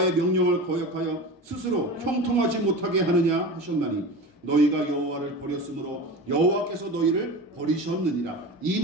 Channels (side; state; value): both; normal; correlation 0.30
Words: 명령을 거역하여 스스로 형통하지 못하게 하느냐 하셨나니 너희가 여호와를 버렸으므로 여호와께서 너희를 버리셨느니라. 이